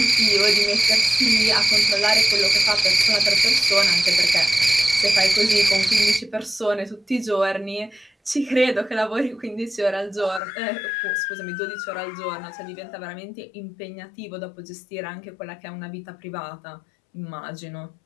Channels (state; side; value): drops out; right; at 10.4 s